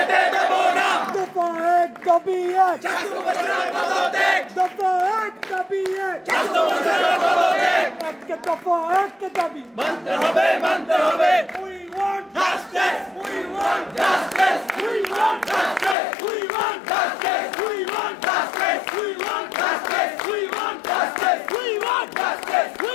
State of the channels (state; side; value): drops out; right; at 16.0 s